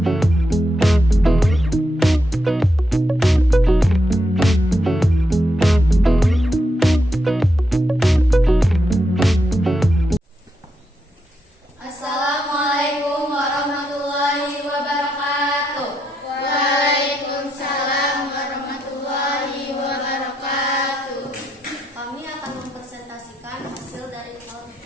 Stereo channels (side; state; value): both; normal; correlation 0.82